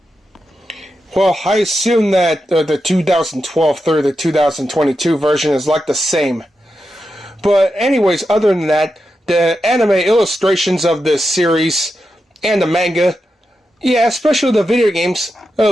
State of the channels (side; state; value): both; normal; correlation 0.88